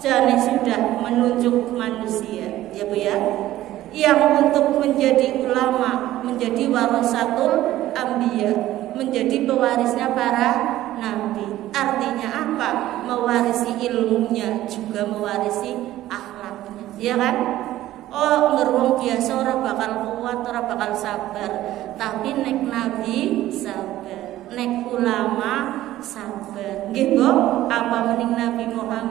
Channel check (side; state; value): left; quieter; 14.6 dB